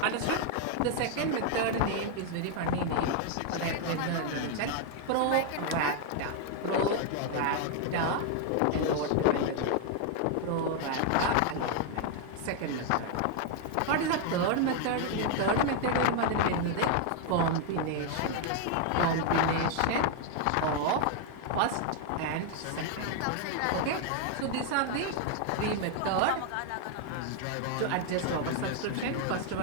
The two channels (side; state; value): both; different; correlation 0.00